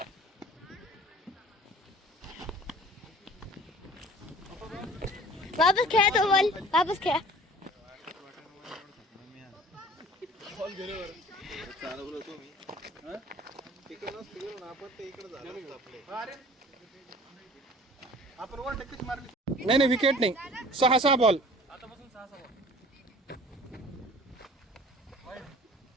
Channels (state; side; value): normal; both; correlation 0.47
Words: वापस खेळा तो बॉल. वापस खेळा. चालवलं तुम्ही तिकडे नसतं गेलो ना आपण ते इकडे झालं असतं आपले. अरे आपण वर टक्केच मारली. नाही विकेट नाही. 6 बॉल.